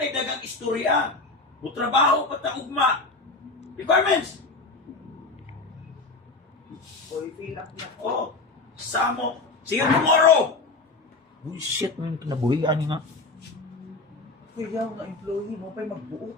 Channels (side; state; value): right; quieter; 3.5 dB